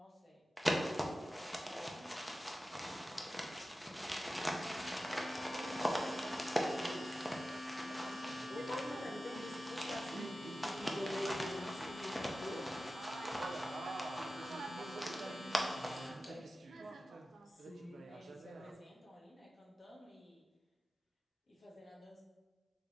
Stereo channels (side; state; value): both; normal; correlation 0.94